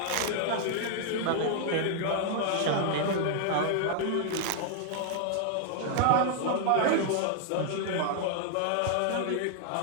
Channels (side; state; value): both; different; correlation 0.00